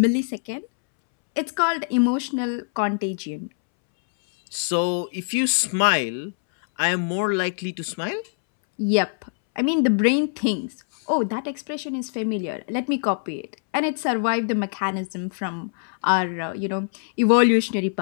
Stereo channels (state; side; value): silent; right; 63 dB below the other